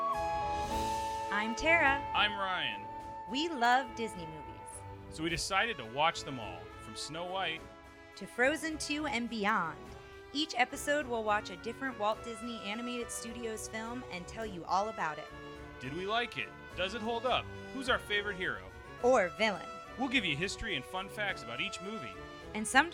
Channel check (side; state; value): both; identical; correlation 1.00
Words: I'm Tara. I'm Ryan. We love Disney movies. So we decided to watch them all, from Snow White To Frozen 2 and beyond. Each episode will watch a different Walt Disney Animated Studios film and tell you all about it. Did we like it? Does it hold up? Who's our favorite hero? Or villain. We'll give you history and fun facts about each movie. And